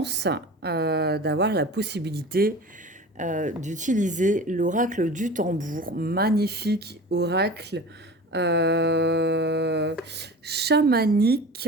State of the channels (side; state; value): both; normal; correlation 0.36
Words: d'avoir la possibilité d'utiliser l'oracle du tambour. Magnifique oracle euh, chamanique.